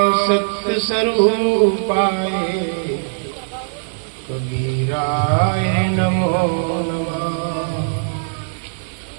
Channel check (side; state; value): left; silent; digital silence